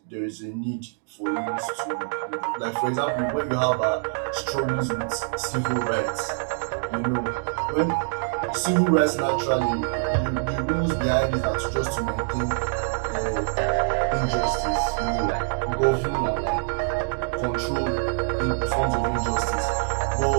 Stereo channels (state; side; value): silent; left; digital silence